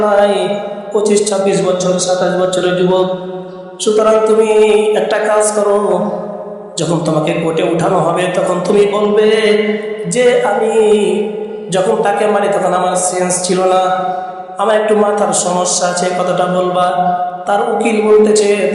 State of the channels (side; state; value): both; identical; correlation 1.00